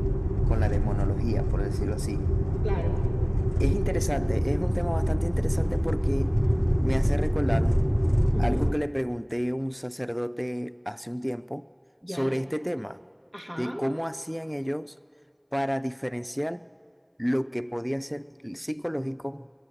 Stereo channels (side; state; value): both; identical; correlation 1.00